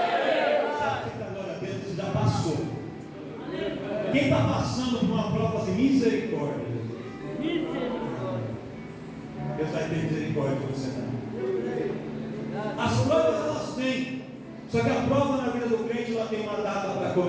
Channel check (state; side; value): identical; both; correlation 1.00